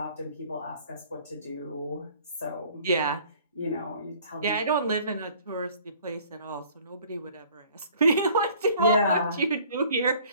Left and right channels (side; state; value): both; inverted; correlation -0.54